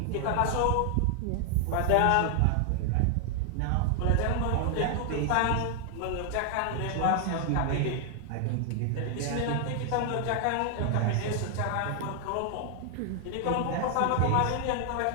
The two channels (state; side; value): different; both; correlation 0.00